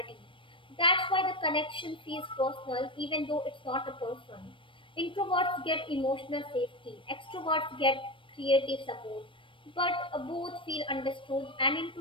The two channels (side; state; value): right; late; 0.25 ms